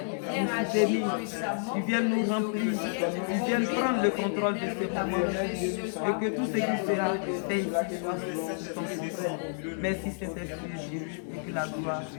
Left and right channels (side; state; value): right; silent; digital silence